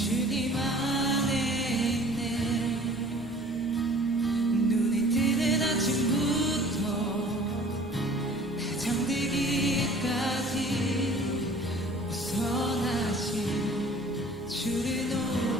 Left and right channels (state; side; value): normal; both; correlation 0.49